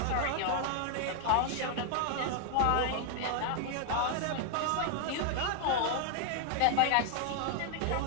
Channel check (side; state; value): both; different; correlation 0.00